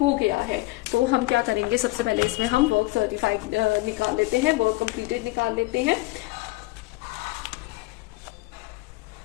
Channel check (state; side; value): quieter; right; 21.0 dB